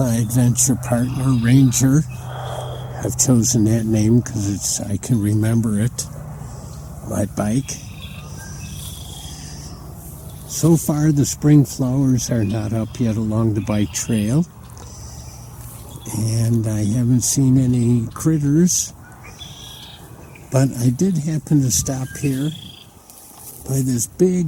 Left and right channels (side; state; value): both; identical; correlation 1.00